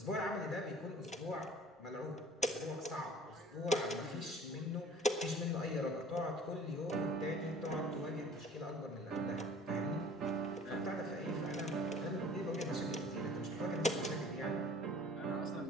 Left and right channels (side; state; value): both; normal; correlation 0.49